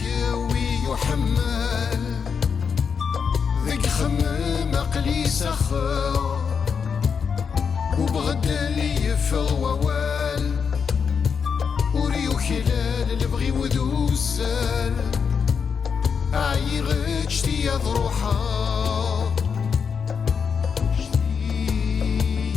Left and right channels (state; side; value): quieter; right; 6.3 dB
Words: يحمل ذيك خمم عقلي سخر وبغدا لي يفغوال وريو خلال البغي وذوسال عايغ اجتي ضروحا